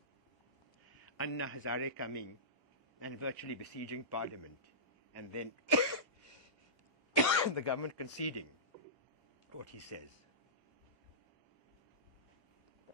Anna Hazare coming and virtually besieging Parliament, and then the government conceding what he says.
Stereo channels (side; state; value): both; normal; correlation -0.18